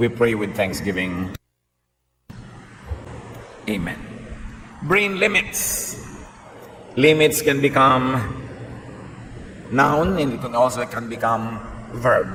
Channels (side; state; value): both; identical; correlation 1.00